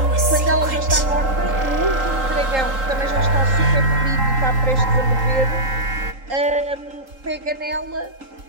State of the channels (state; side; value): late; left; 3.8 ms